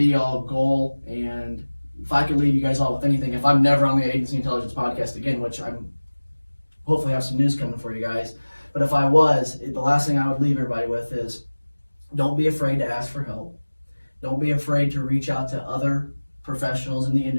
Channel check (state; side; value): inverted; both; correlation -1.00